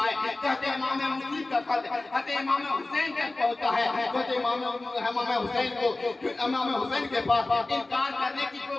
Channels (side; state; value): right; quieter; 3.0 dB